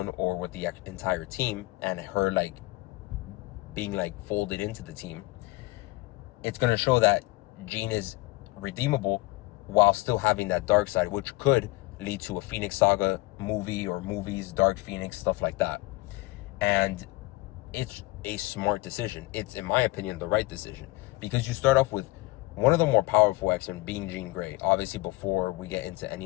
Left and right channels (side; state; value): right; quieter; 20.8 dB